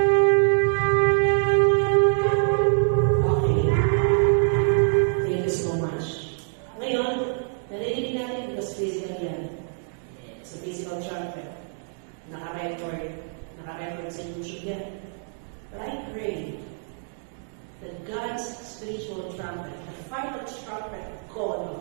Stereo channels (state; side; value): silent; left; digital silence